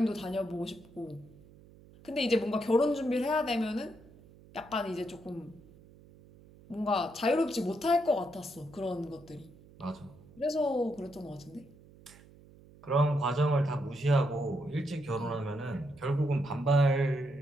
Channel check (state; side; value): noise; right; hum, 23 dB below the sound